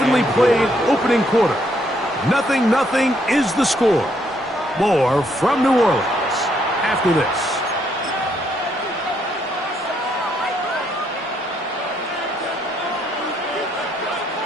played opening quarter. 0-0 is the score. More from New Orleans after this.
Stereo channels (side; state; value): both; normal; correlation 0.72